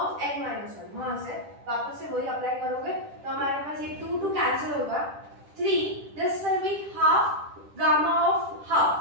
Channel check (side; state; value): left; late; 10 ms